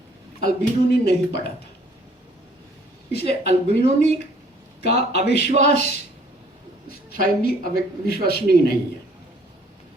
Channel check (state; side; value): normal; both; correlation 0.59